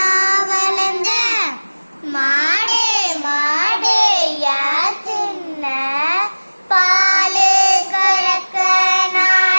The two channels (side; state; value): both; inverted; correlation -1.00